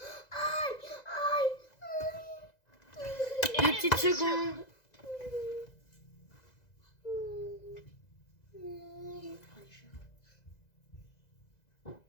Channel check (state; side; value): late; right; 2.0 ms